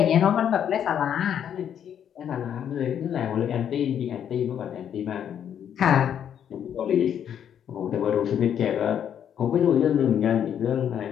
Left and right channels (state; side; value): quieter; right; 9.1 dB